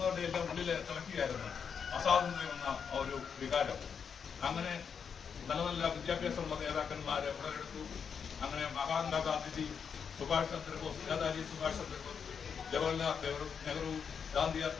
എല്ലാം ഉള്ളിൽ തിളക്കുകയായിരുന്നു അസ്വാതന്ത്ര്യം എന്ന ഒരു വികാരം. അങ്ങനെ നല്ല നല്ല വിദ്യാഭ്യാസമുള്ള നേതാക്കന്മാരെ ഉടലെടുത്തു. അങ്ങനെ മഹാത്മാഗാന്ധിജി, സുഭാഷ് ചന്ദ്രബോസ്, നേതാജി സുഭാഷ് ചന്ദ്രബോസ്, ജവഹർലാൽ നെഹ്റു, ഗാന്ധിയാർ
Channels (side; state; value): right; quieter; 6.7 dB